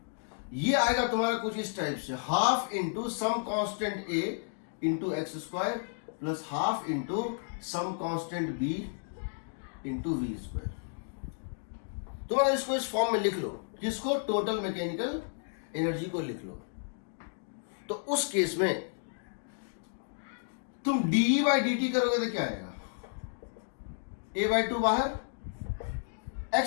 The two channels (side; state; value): right; silent; digital silence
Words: ये आएगा तुम्हारा कुछ इस टाइप से, half into some constant A into X square plus half into some constant B into V square. तुम्हारा इसको इस फॉर्म में लिख लो, किसको? टोटल मैकेनिकल एनर्जी को लिख लो। तो उस केस में तुम dE बाई dt करोगे तो क्या आएगा? a बाई 2 बाहर,